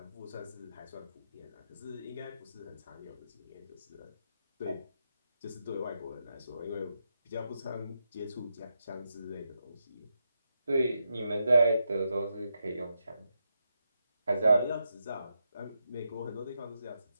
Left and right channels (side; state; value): both; inverted; correlation -0.84